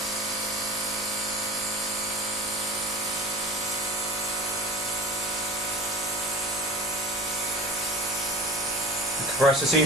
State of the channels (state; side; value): normal; both; correlation 0.36